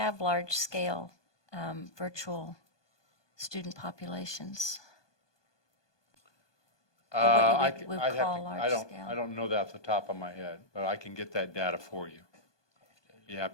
large-scale virtual student populations? Or what you would call large scale? I don't know that off the top of my head, but I can get that data for you. Be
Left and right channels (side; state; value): right; late; 1.2 ms